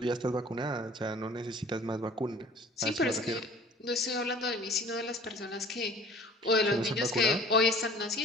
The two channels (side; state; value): both; normal; correlation 0.48